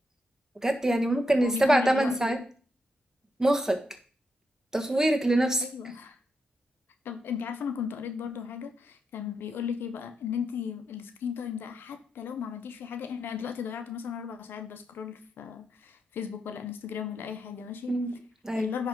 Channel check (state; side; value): normal; both; correlation 0.83